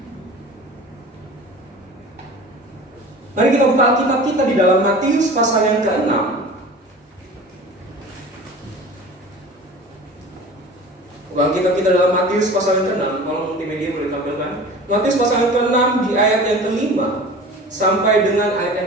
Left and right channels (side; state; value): both; normal; correlation 0.39